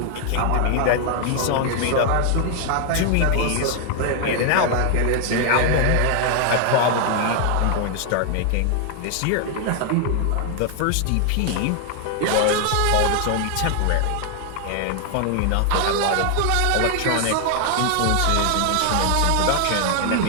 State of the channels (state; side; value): different; both; correlation 0.00